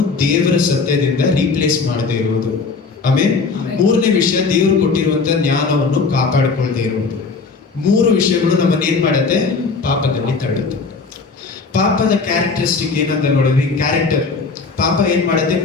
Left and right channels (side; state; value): right; quieter; 4.5 dB